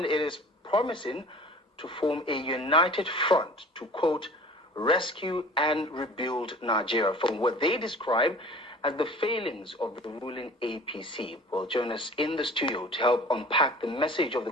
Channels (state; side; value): normal; both; correlation 0.44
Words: it is promising to form a united front to, quote, rescue and rebuild Nigeria from what they describe as the failings of the ruling APC. Will join us in the studio to help unpack the message of